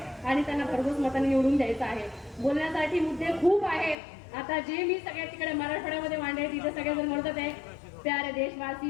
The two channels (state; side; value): drops out; right; at 4.0 s